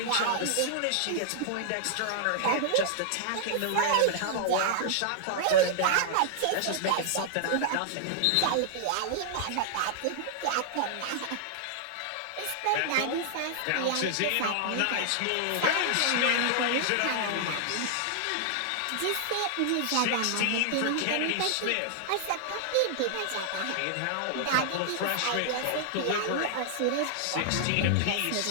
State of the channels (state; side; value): different; both; correlation -0.01